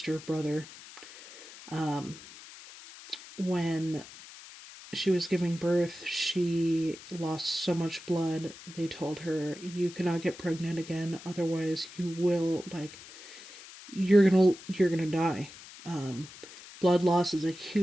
brother, um, when she was giving birth, she lost so much blood. They told her, "You cannot get pregnant again, otherwise you will you're gonna die." Um, Blood loss is a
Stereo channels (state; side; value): noise; left; hiss, 17 dB below the sound